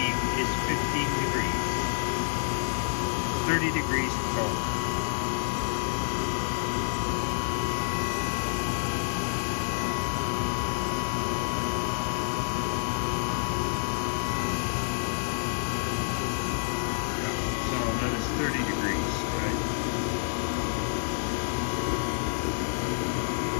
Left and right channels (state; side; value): silent; right; 59 dB below the other